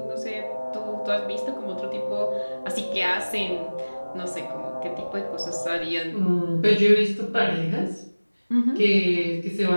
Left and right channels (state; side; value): inverted; both; correlation -1.00